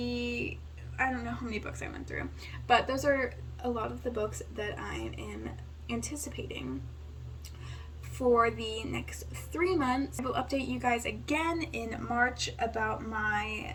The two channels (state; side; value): identical; both; correlation 1.00